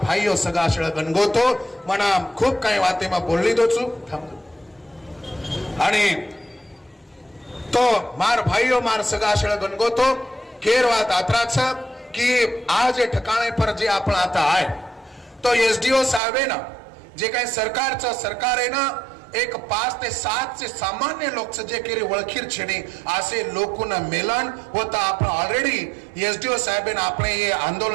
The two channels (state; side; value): drops out; left; at 16.2 s